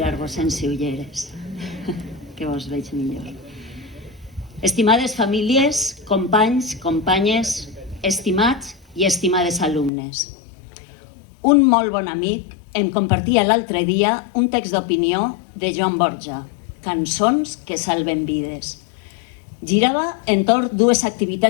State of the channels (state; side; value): drops out; right; at 9.9 s